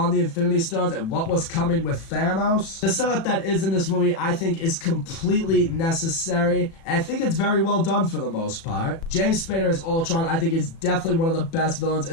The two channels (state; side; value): late; right; 36 ms